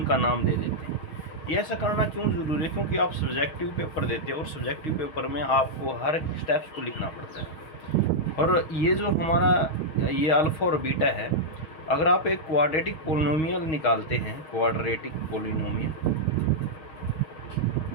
नाम दे देते हैं। ये ऐसा करना क्यों ज़रूरी है? क्योंकि आप सब्जेक्टिव पेपर देते हो और सब्जेक्टिव पेपर में आपको हर स्टेप्स को लिखना पड़ता है। और ये जो हमारा ये अल्फ़ा और बीटा है, अगर आप एक क्वाड्रेटिक पोलिनोमियल निकालते हैं, क्वाड्रेटिक पोलिनोमियल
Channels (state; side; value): late; right; 6.3 ms